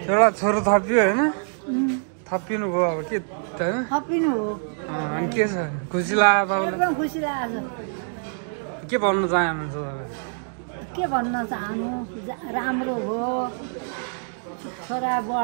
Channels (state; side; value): silent; left; 62 dB below the other